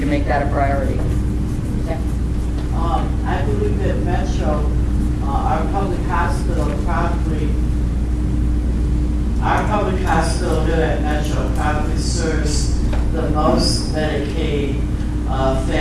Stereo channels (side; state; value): both; identical; correlation 1.00